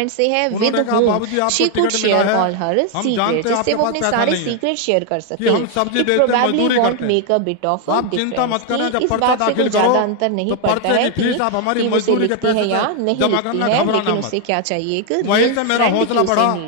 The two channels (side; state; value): both; different; correlation 0.00